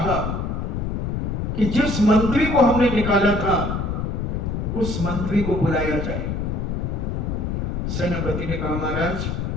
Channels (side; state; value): left; noise; rumble, 2 dB below the sound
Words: कि जिस मंत्री को हमने निकाला था उस मंत्री को बुलाया जाए। सेनापति ने कहा, महाराज,